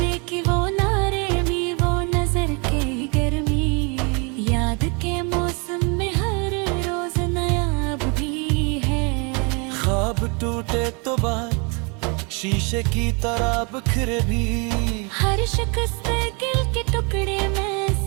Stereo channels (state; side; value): quieter; left; 32.8 dB